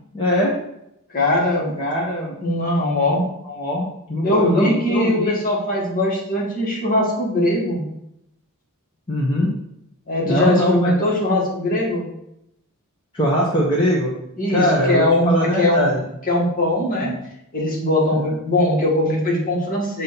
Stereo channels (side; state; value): both; normal; correlation 0.20